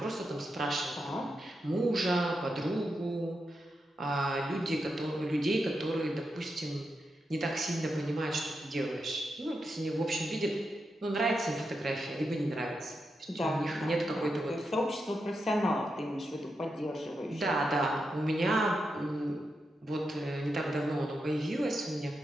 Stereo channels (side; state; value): both; normal; correlation 0.86